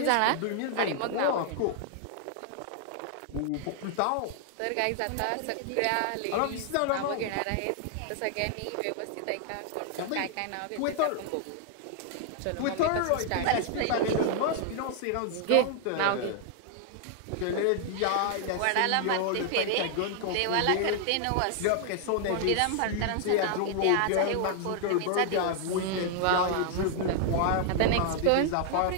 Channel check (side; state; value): both; different; correlation 0.00